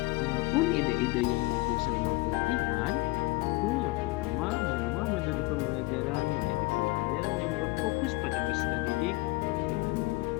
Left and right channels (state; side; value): quieter; right; 23.3 dB